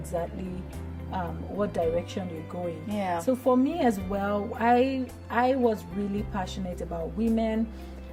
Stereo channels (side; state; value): both; identical; correlation 1.00